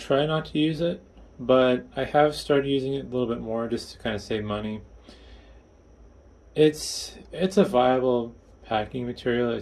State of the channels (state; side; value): identical; both; correlation 1.00